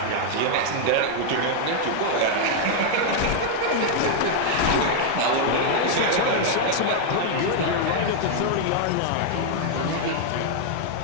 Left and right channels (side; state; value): both; different; correlation 0.00